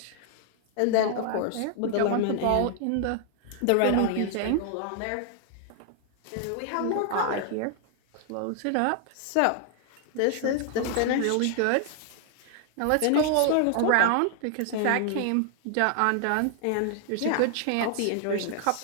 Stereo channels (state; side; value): different; both; correlation 0.00